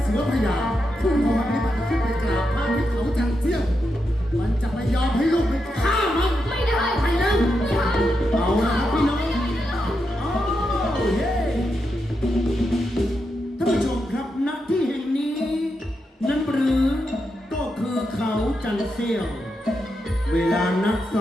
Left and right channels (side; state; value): both; normal; correlation 0.85